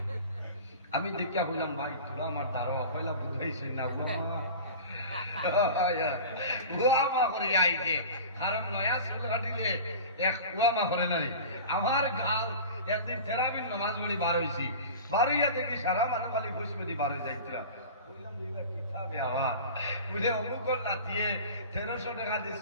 আমি দেখিয়া বললাম ভাই তোরা আমার দাঁড়া পয়লা বুঝাইছি না উয়ামা করে আইছে কারণ নয়া চুল কাটিলে এক উয়ামা করে নাই আমার গাল একদিন থেরাপির নামাজ পড়ি বার হয়েছি বার হইয়া দেখি সারা মানুষ খালি বুঝবে দি বার হয়ে যাইতরা অমুকর নাতিয়ে 1300 টাকা দিয়ে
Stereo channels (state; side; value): inverted; both; correlation -0.35